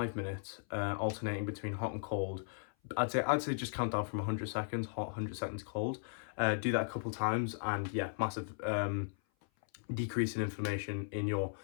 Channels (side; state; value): right; silent; 53 dB below the other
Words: minutes, alternating between hot and cold. I'd say just count down from 100 seconds hot, 100 seconds cold. Do that a couple times, and yeah, massive decrease in inflammation in your